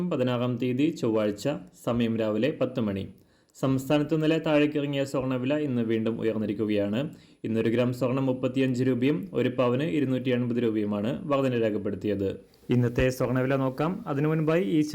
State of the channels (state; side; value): identical; both; correlation 1.00